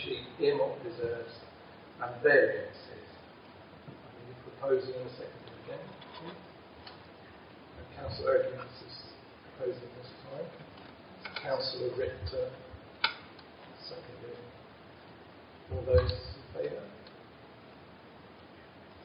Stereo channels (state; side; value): identical; both; correlation 1.00